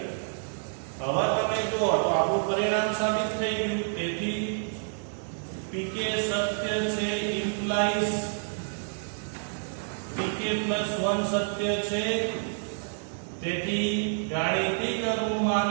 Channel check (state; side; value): silent; left; digital silence